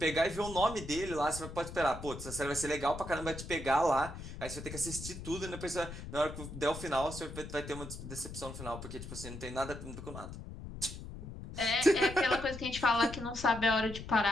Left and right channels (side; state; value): left; noise; rumble, 10 dB below the sound